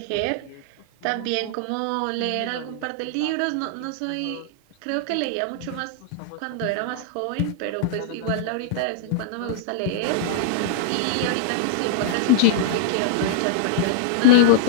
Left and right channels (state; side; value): different; both; correlation -0.02